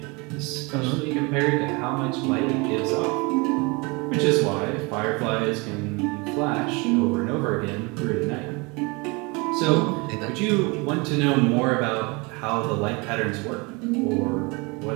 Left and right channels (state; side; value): quieter; left; 27.7 dB